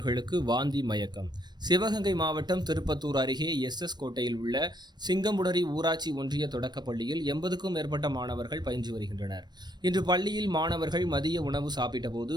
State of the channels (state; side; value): late; left; 0.21 ms